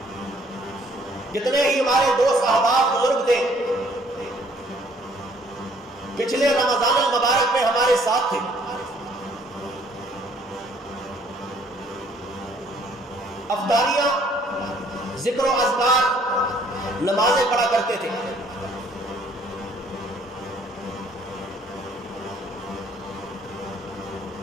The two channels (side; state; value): both; normal; correlation 0.61